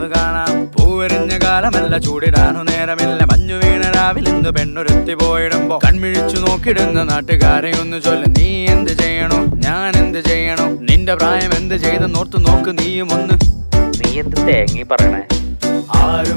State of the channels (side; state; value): both; inverted; correlation -1.00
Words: കാണാം. പൂവെറിഞ്ഞ കാലമല്ല ചൂടിടാനു നേരമില്ല. മഞ്ഞു വീണ രാവിലെന്ത് പെണ്ണുരുത്തി പോയിടുമ്പോ കൺമിഴിച്ചു നോക്കിടുന്ന നാട്ടുകാരെ ഒന്ന് ചൊല്ല്. നീ എന്ത് ചെയ്യണോ ഞാൻ എന്ത് ചെയ്യണോ? നിന്റെ പ്രായം എന്ത് ചെയ്തെന്നോർത്തു നോക്ക് നീയും ഒന്ന്. നീ എന്ത് തേങ്ങി പറയണേ?